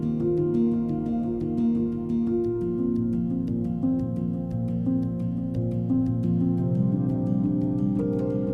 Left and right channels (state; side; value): identical; both; correlation 1.00